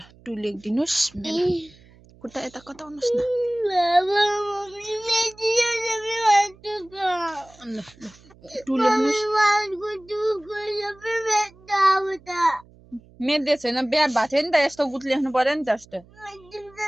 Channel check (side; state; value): right; noise; hum, 26 dB below the sound